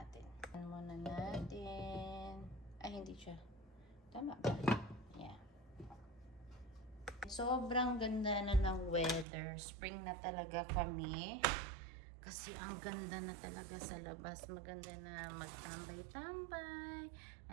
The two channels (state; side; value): drops out; left; at 9.2 s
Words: Ano muna natin? Ay, hindi siya. Tama ba? Yeah. Sobrang ganda na ng weather. Spring na talaga kami. Kasi ang ganda na talaga sa labas. Maganda na magtambay-tambay.